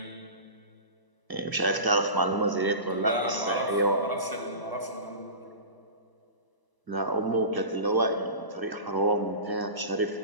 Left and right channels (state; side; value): late; left; 1.0 ms